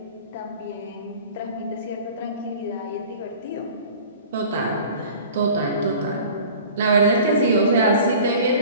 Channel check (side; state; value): both; inverted; correlation -0.43